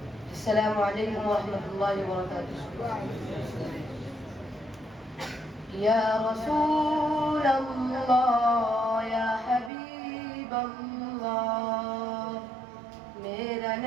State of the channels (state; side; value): drops out; left; at 9.7 s